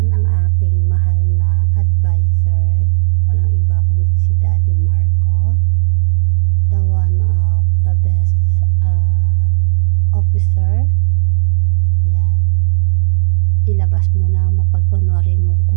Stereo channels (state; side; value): silent; left; digital silence